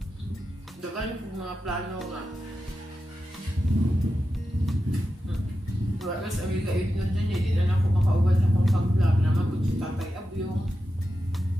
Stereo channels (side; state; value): both; normal; correlation 0.90